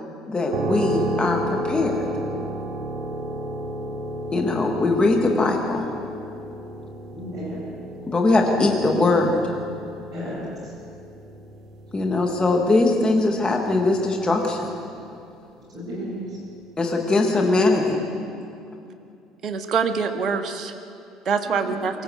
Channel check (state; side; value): normal; both; correlation 0.74